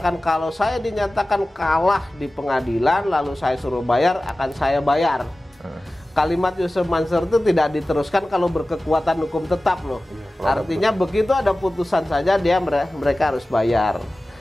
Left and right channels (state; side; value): normal; both; correlation 0.96